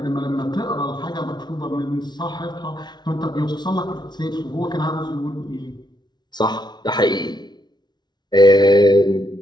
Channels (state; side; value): late; right; 0.20 ms